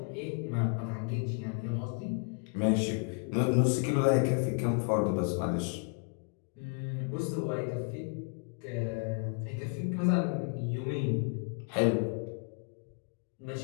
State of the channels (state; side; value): quieter; right; 39.4 dB